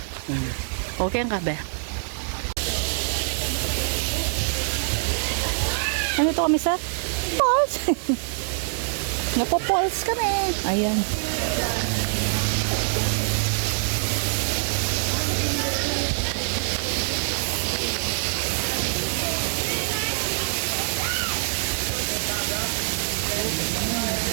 Okay ang kabe. Ano to kami sa falls? Napo-falls kami. Ayan.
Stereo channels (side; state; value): left; silent; digital silence